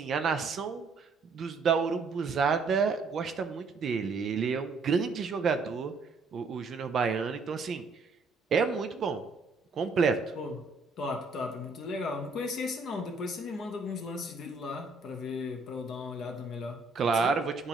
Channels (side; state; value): left; quieter; 3.9 dB